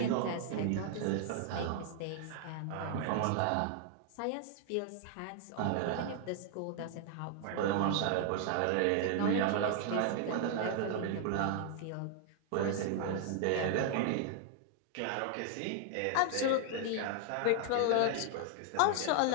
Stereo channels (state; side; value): different; both; correlation 0.00